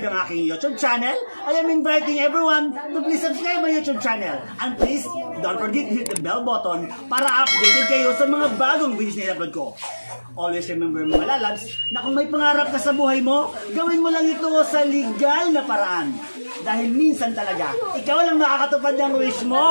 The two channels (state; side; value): inverted; both; correlation -1.00